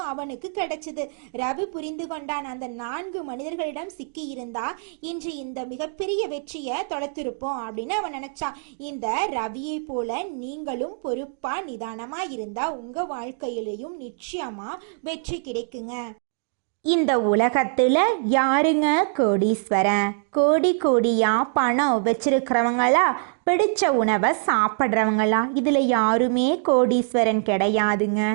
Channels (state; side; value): silent; left; 63 dB below the other